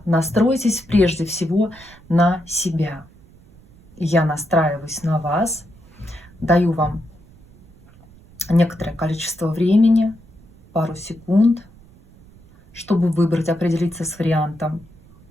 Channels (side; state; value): right; noise; rumble, 25 dB below the sound